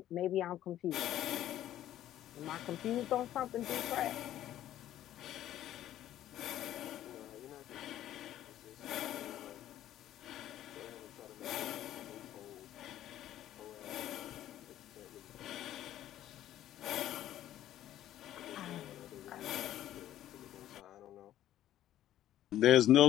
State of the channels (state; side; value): quieter; right; 12.6 dB